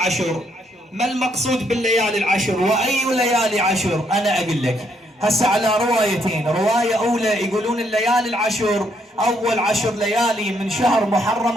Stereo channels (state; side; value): normal; both; correlation 0.73